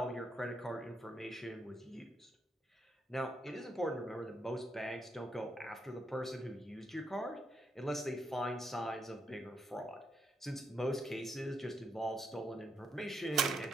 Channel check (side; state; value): both; normal; correlation 0.80